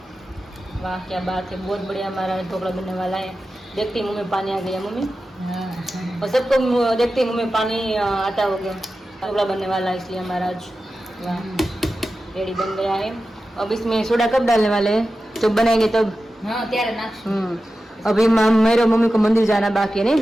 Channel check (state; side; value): normal; both; correlation 0.93